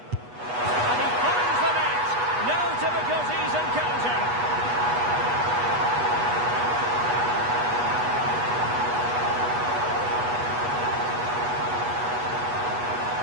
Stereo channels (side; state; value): left; late; 8.2 ms